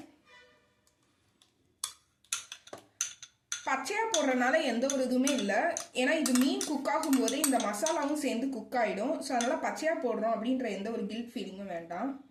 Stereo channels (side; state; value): both; identical; correlation 1.00